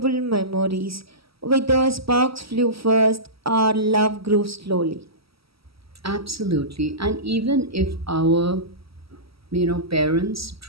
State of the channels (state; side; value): late; left; 0.76 ms